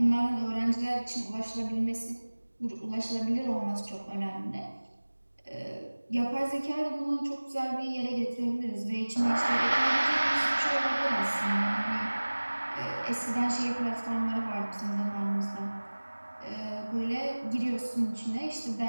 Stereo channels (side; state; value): both; inverted; correlation -1.00